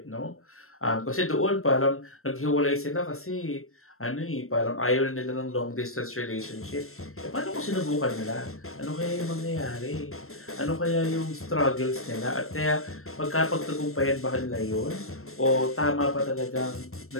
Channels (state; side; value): late; right; 0.62 ms